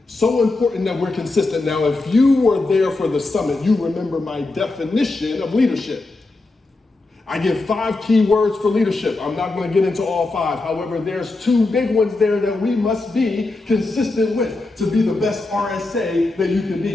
So important that we're consistent. Now, if you were there for the summit, you remember my definition of leadership. I give 5 key words for leadership. I'm not going to get into all 5. However, there's 2 big ones there that we must be consistent with to be the best RSA that you can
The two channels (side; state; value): right; quieter; 3.2 dB